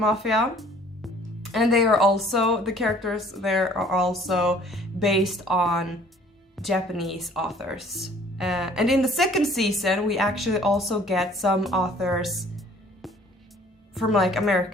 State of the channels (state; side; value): normal; both; correlation 0.55